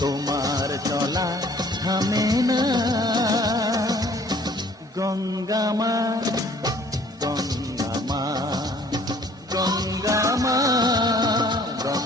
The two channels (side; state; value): both; normal; correlation 0.56